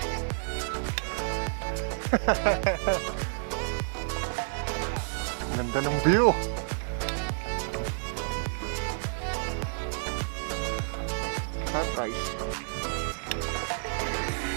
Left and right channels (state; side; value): silent; left; 58 dB below the other